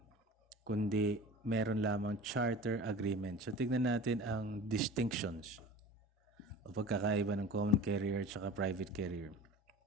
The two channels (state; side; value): normal; both; correlation 0.38